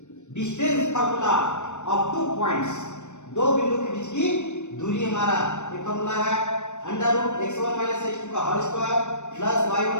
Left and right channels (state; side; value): late; right; 0.84 ms